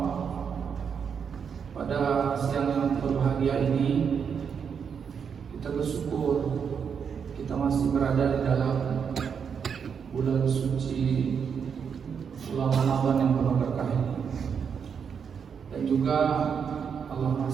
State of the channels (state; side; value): quieter; left; 6.8 dB